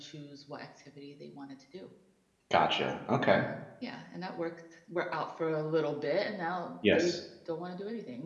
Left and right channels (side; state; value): both; identical; correlation 1.00